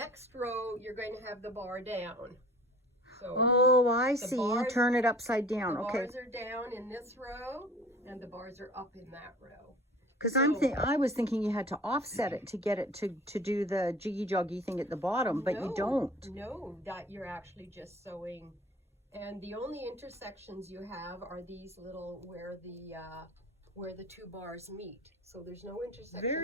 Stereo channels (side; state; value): both; normal; correlation 0.45